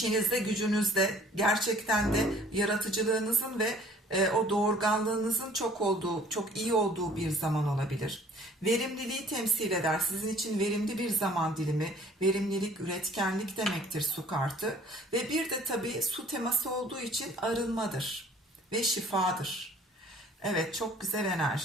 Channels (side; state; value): both; normal; correlation 0.54